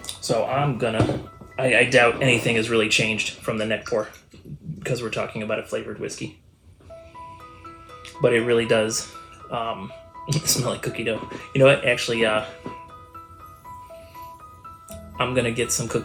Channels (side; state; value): both; identical; correlation 1.00